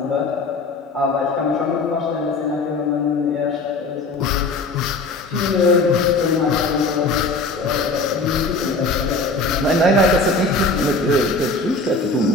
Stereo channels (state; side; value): quieter; right; 3.3 dB